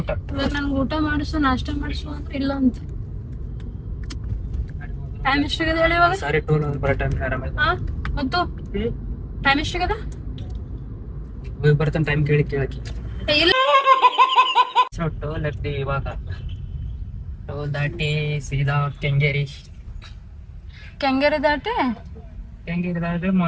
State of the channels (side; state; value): both; identical; correlation 1.00